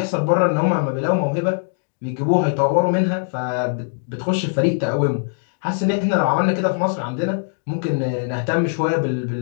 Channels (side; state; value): right; silent; digital silence